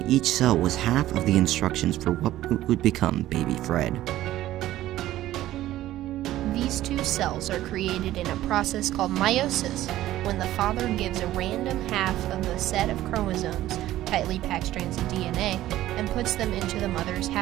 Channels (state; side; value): quieter; left; 14.5 dB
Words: each cell was half of the instructions for what would become baby Fred. These two cells are created in a process called meiosis, when the father gives a random half of the set of chromosomes, tightly packed strands of DNA, and puts them into the mother's